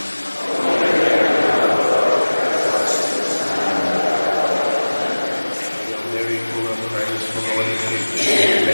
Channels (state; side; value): inverted; both; correlation -1.00